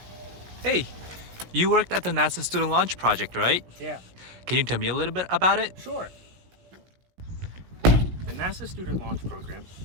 Hey, you worked at the NASA Student Launch Project, right? Yeah, Can you tell me a little bit about it? sure. The NASA Student Launch Program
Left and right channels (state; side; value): late; left; 17 ms